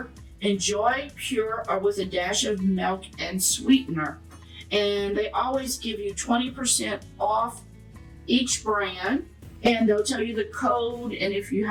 Enjoy pure or with a dash of milk and sweetener. And they always give you 20% off each brand, and they'll tell you the code, and if you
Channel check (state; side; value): identical; both; correlation 1.00